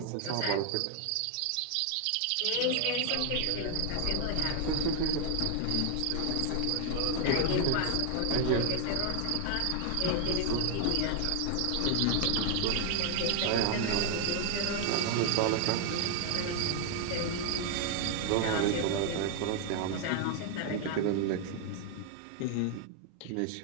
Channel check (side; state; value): both; different; correlation 0.00